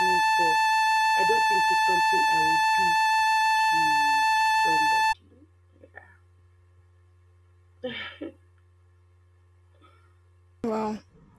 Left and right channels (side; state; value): both; identical; correlation 1.00